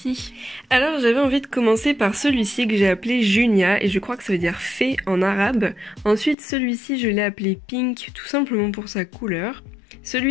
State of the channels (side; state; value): right; drops out; at 6.4 s